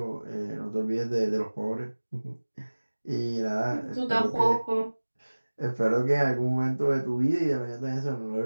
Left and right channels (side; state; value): both; inverted; correlation -1.00